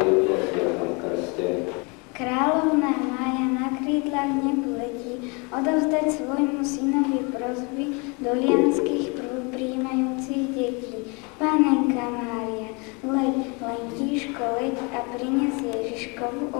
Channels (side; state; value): right; quieter; 30.9 dB